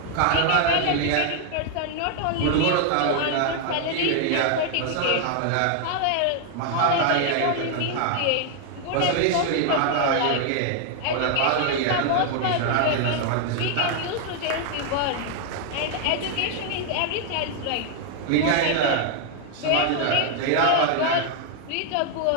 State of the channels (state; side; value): different; both; correlation 0.00